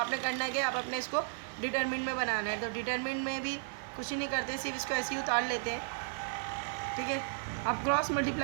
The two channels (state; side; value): silent; left; digital silence